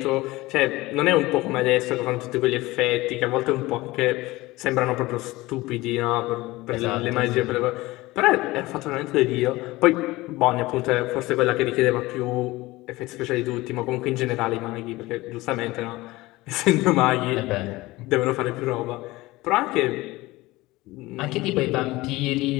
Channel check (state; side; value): quieter; right; 19.8 dB